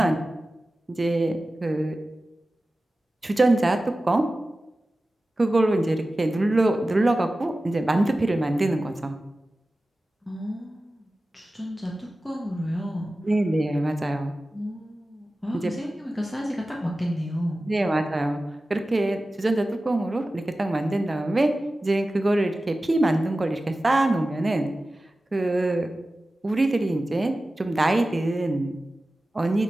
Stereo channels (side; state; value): both; normal; correlation 0.95